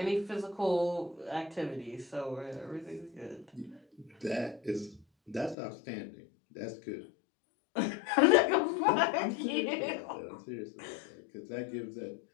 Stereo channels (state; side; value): drops out; right; at 5.6 s